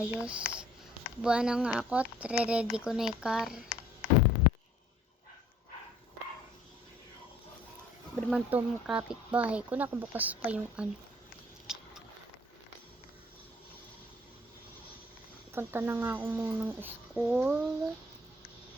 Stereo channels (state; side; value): normal; both; correlation 0.57